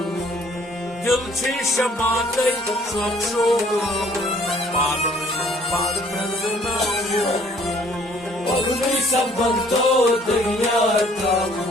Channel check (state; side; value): normal; both; correlation 0.59